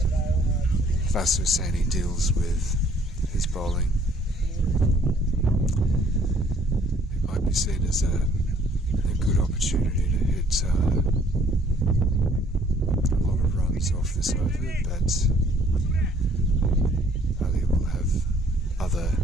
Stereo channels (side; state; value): both; normal; correlation 0.60